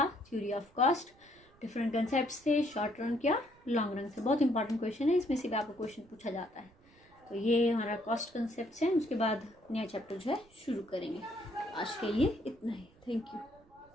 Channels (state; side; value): noise; right; rumble, 29 dB below the sound